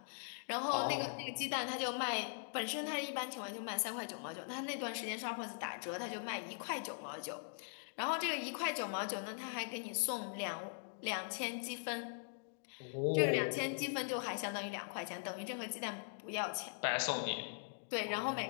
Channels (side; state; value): right; silent; digital silence